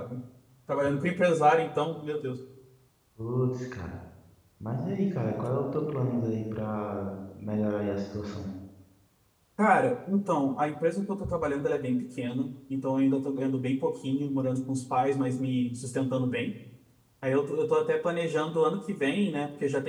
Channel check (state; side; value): identical; both; correlation 1.00